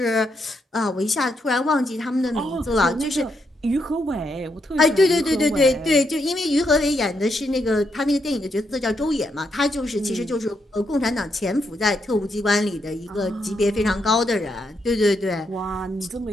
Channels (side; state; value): both; normal; correlation 0.79